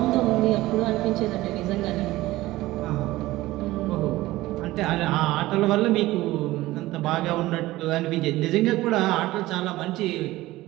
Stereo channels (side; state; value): left; quieter; 17.6 dB